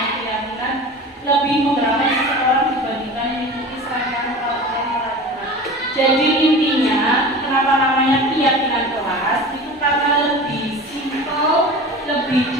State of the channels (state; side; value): normal; both; correlation 0.35